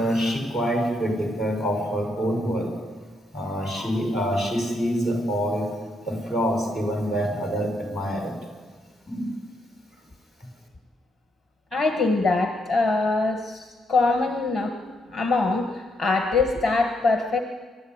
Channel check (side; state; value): both; normal; correlation 0.77